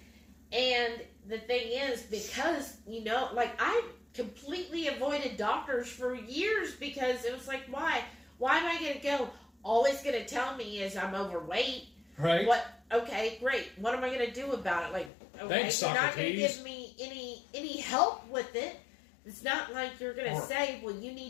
And the thing is, because, I completely avoided doctors for years because it was like, why? Why am I going to go? Always going to tell me is I'm overweight. Right. What? Okay, great. What am I going to do about it? Like, okay, thanks, you're not going to Socrates. give me any help with it. It's not like you're going to say, well, you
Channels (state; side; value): drops out; right; at 15.1 s